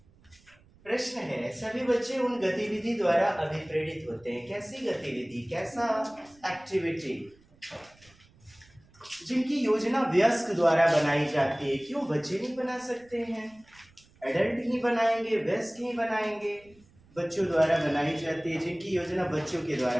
प्रश्न है, सभी बच्चे उन गतिविधि द्वारा अभिप्रेरित होते हैं। कैसी गतिविधि, कैसा एक्टिविटी जिनकी योजना वयस्क द्वारा बनाई जाती है। क्यों बच्चे नहीं बना सकते हैं? एडल्ट ही बनाएंगे, वयस्क ही बनाएंगे। बच्चों द्वारा बनाई जाती है, जिनकी योजना बच्चों के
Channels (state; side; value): noise; right; rumble, 29 dB below the sound